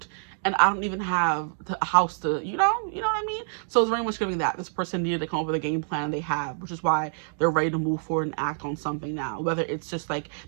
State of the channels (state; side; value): silent; left; digital silence